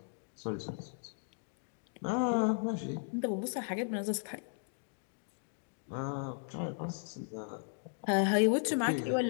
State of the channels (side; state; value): right; silent; 54 dB below the other